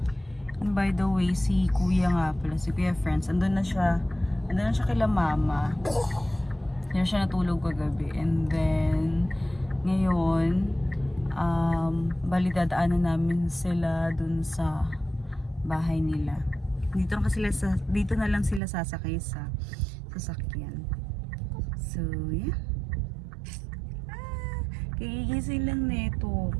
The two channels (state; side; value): drops out; left; at 18.6 s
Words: And by the way, si Kuya nga pala, si Kuya Friends, andun na siya kila mama. Yan siya natulog kagabi. And then, ngayon, bali dadaanan namin sila dun sa bahay nila. Dito na lang sila sasakay sa sasakyan. So, yeah. Kagigising lang neto.